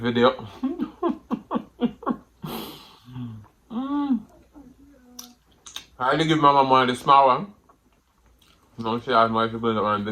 I only give my mama one of the small one. No, she has my people that want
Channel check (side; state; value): both; identical; correlation 1.00